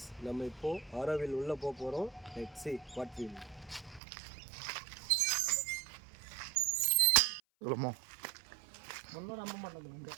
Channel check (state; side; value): drops out; left; at 4.0 s